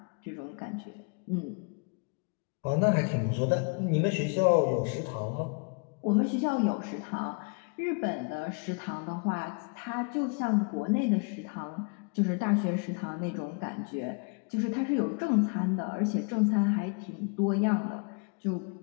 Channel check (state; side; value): quieter; right; 34.4 dB